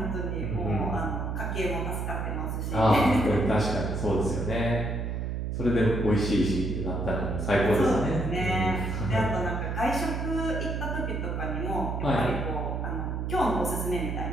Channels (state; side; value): noise; right; hum, 2 dB below the sound